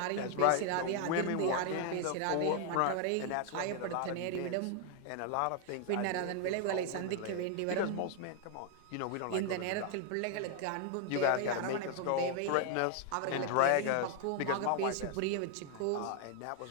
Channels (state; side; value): different; both; correlation 0.00